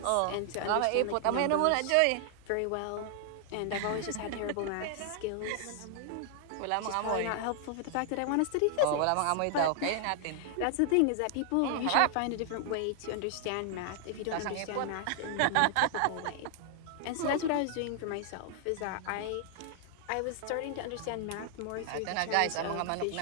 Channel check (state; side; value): different; both; correlation 0.00